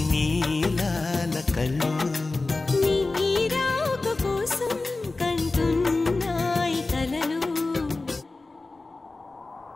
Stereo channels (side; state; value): right; quieter; 3.4 dB